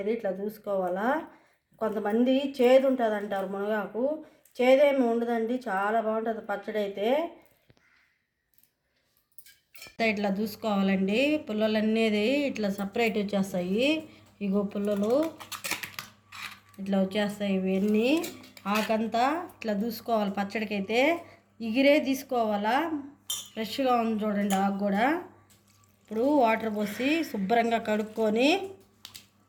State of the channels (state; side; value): identical; both; correlation 1.00